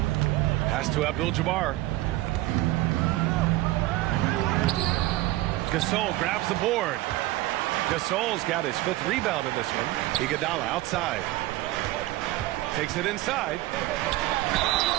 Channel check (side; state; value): left; quieter; 17.6 dB